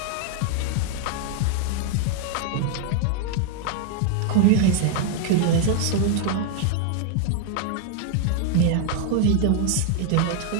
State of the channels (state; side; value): different; both; correlation 0.00